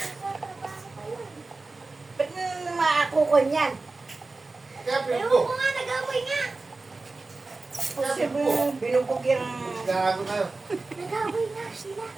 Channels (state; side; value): quieter; left; 3.5 dB